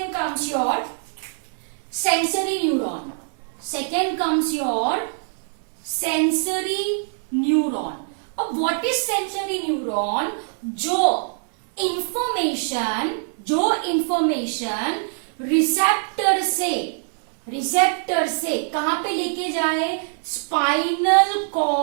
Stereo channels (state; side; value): silent; left; 63 dB below the other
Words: comes your sensory neuron. Second comes your sensory neuron. अब व्हाट इज सेंसरी न्यूरॉन? जो इंफॉर्मेशन रिसेप्टर से कहां पे लेके जाए? स्पाइनल